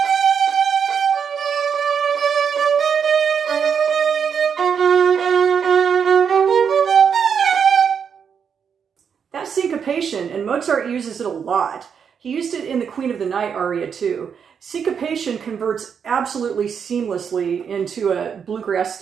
Syncopation, and Mozart uses it a lot. He used it in the Queen of the Night aria too. Syncopation converts absolutely seamlessly into a bluegrass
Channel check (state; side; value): quieter; left; 7.0 dB